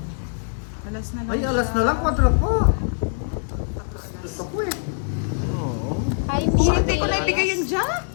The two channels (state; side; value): silent; right; digital silence